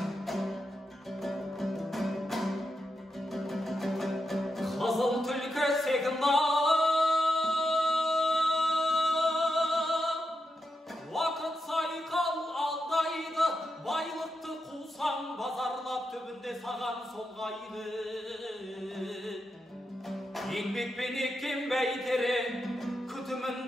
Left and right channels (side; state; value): both; normal; correlation 0.86